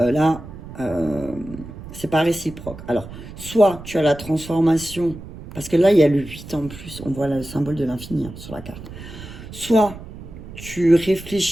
c'est pas réciproque. Alors, soit tu as la transformation, parce que là, il y a le 8 en plus, on voit le symbole de l'infini hein, sur la carte. Soit tu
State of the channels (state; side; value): noise; right; rumble, 14 dB below the sound